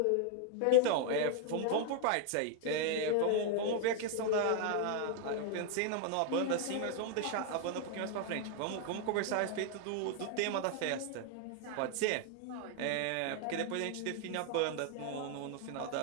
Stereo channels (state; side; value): different; both; correlation 0.00